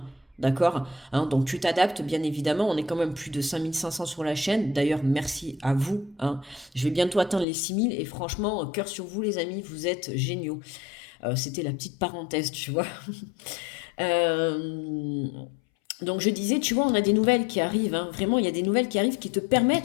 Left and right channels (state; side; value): drops out; right; at 7.5 s